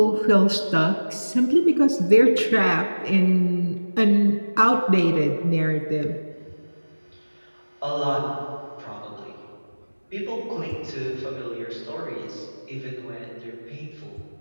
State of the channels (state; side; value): inverted; both; correlation -1.00